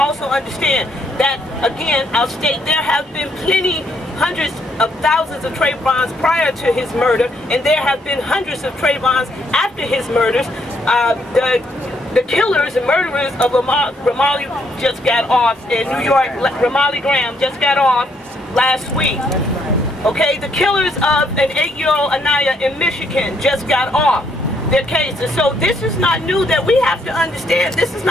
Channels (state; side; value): normal; both; correlation 0.71